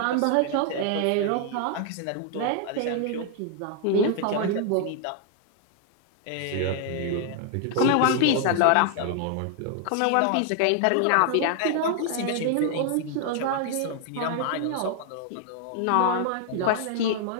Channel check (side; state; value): both; different; correlation 0.00